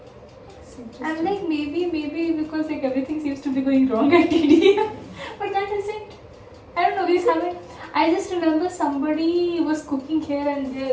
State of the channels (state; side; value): identical; both; correlation 1.00